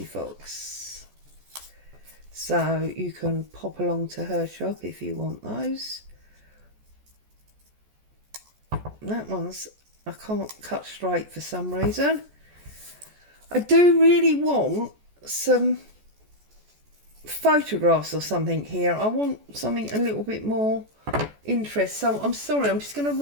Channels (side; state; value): left; late; 14 ms